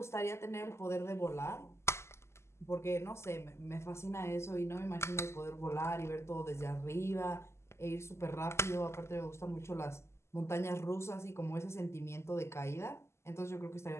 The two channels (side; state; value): right; late; 0.13 ms